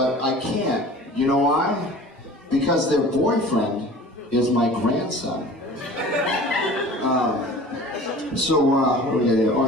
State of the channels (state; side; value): normal; both; correlation 0.43